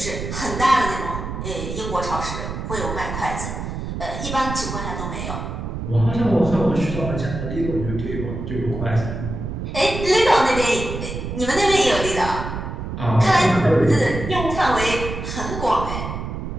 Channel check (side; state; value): right; noise; rumble, 6 dB below the sound